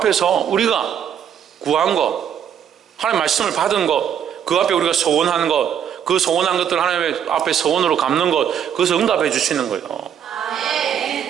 우리가 구한 것, 하나님 말씀을 받은 것, 그 앞에 우리가 소원하는 것, 그 소원한 것들을 하나님 앞에 소원으로 갚는 것, 그것을 응답해 주시는 거예요.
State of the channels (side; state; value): left; quieter; 8.8 dB